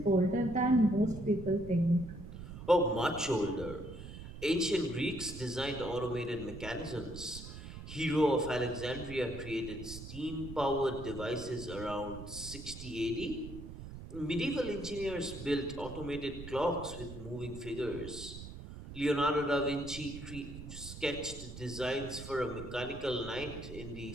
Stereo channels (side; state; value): right; noise; rumble, 11 dB below the sound